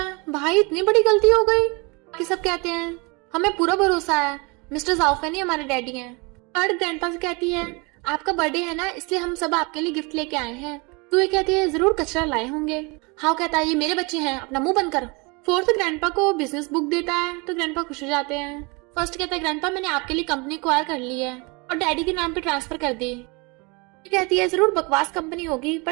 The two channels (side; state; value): left; quieter; 28.8 dB